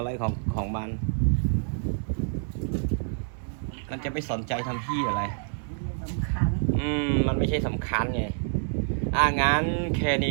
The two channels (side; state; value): left; silent; digital silence